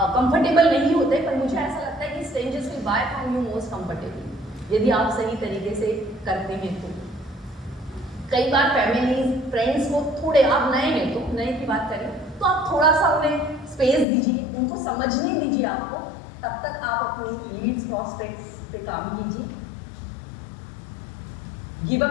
कंफर्टेबल नहीं होते, पर मुझे ऐसा लगता है कि strangers will buy from you most comfortable, यदि आप सही तरीके से करते हैं तो। कई बार फैमिलीज, फ्रेंड्स को थोड़े, आप नए हैं तो नए की बात करें तो आप थोड़ा सा उन्हें स्पेस दीजिए, उनको समझने दीजिए आपको, तब तक आप अपनी लीड्स प्रॉस्पेक्ट्स पे काम कीजिए। गिव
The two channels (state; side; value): drops out; right; at 14.1 s